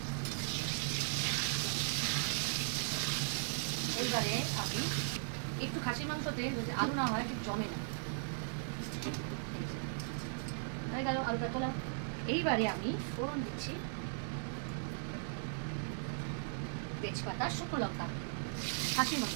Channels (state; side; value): silent; left; digital silence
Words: এইবারে আমি একটু খাসির মাংসতে যদি আলু না হয় ঠিক জমে না, হয়ে গেল আলুটা তোলা। এইবারে আমি ফোড়ন দিচ্ছি তেজপাতা, শুকনো লঙ্কা, খাসির